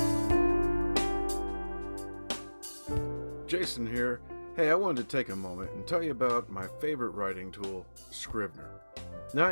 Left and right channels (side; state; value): both; inverted; correlation -1.00